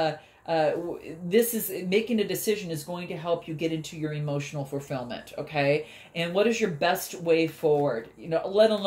this is making a decision is going to help you get into your emotional fulfillment, okay? And what is your best way forward? You know, let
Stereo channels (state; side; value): identical; both; correlation 1.00